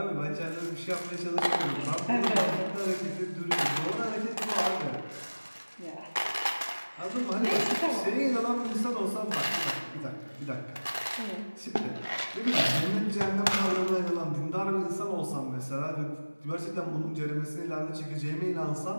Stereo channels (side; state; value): both; inverted; correlation -1.00